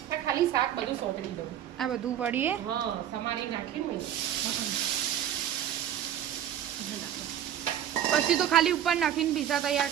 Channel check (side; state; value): left; quieter; 10.6 dB